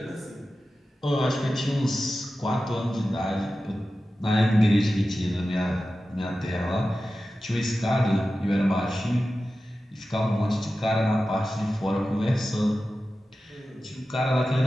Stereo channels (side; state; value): both; normal; correlation 0.93